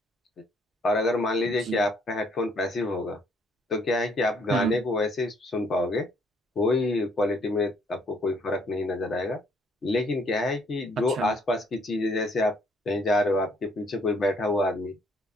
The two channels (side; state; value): both; normal; correlation 0.66